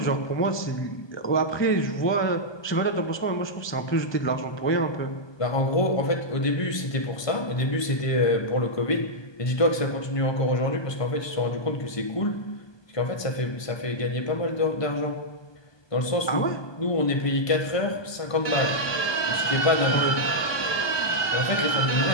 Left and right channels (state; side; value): late; right; 1.2 ms